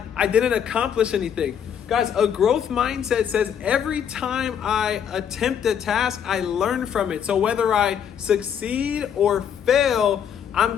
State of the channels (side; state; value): right; quieter; 8.4 dB